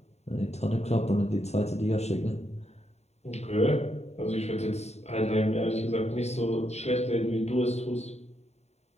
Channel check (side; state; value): right; late; 0.32 ms